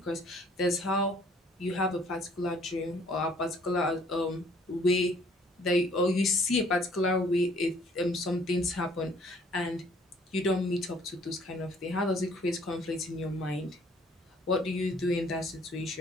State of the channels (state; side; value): normal; both; correlation 0.59